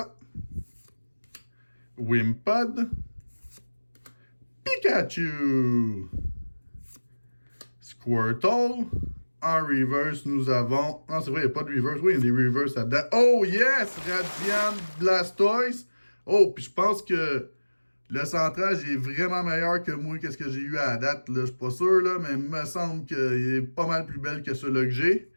Wimpod, Pikachu, Squirtle. En reverse, nous avons... Non, c'est vrai, il n'y a pas de reverse. Oui, il y a des reverse là-dedans. Oh, yes! Radiant Blastoise. Oh, puis je pense que le centrage est vraiment meilleur que moi, qu'est-ce que j'ai eu à la date. Là. Je suis pas sûr, là, mais il me semble qu'il est pas mal plus belle que celui-là que j'ai.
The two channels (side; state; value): both; inverted; correlation -1.00